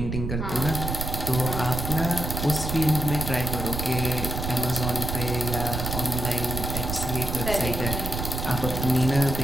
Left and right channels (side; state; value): right; noise; rumble, 4 dB below the sound